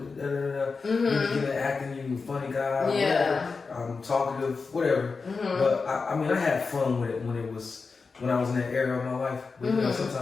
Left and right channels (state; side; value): quieter; right; 4.6 dB